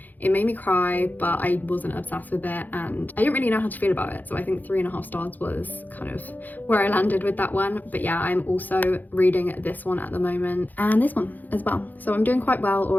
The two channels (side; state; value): right; late; 0.084 ms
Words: It made me cry, but I wasn't obsessed with it and I didn't really know how to feel about it. So I think 3.5 stars was kind of where I landed with that one. But yeah, I'm also reading this one at the moment and this one as well. So I'm doing quite well